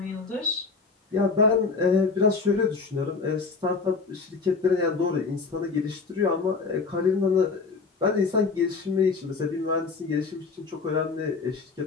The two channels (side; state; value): right; quieter; 4.6 dB